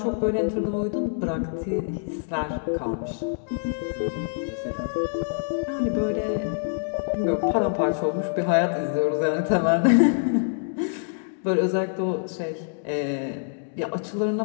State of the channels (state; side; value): silent; right; 61 dB below the other